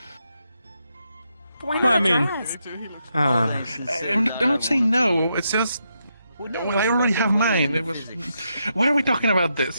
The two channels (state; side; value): inverted; both; correlation -0.82